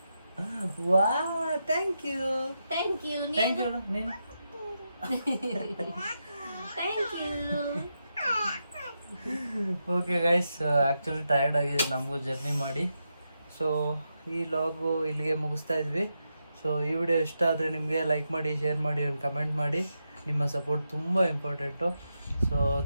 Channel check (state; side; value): inverted; both; correlation -0.86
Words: ವಾ thank you thank you thank you ನೀನು. Thank you. Okay guys, actually tired ಆಗಿದೆ ನಮಗೂ ಜರ್ನಿ ಮಾಡಿ. ಸೊ ಈ ಲಾಗು ಇಲ್ಲಿಗೆ ಮುಗಿಸ್ತಾ ಇದ್ವಿ. ಸೊ ಈ ವಿಡಿಯೋ ಇಷ್ಟ ಆದರೆ ನಿಮಗೆ ಲೈಕ್ ಮಾಡಿ, ಶೇರ್ ಮಾಡಿ, ಒಂದು ಕಮೆಂಟ್ ಮಾಡಿ. ನಿಮ್ಮ ಸಪೋರ್ಟ್ ತುಂಬ important. So